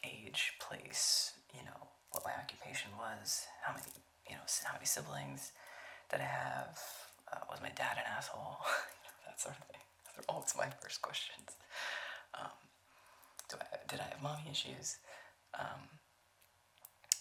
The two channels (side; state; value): both; identical; correlation 1.00